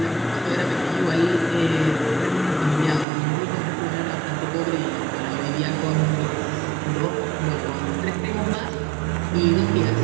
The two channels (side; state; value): left; drops out; at 3.1 s